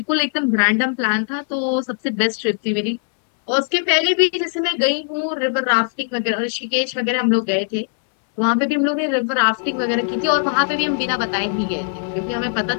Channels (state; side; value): silent; right; 66 dB below the other